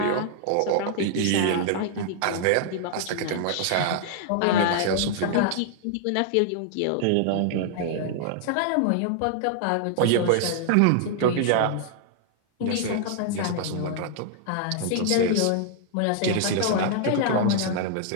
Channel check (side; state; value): both; different; correlation -0.01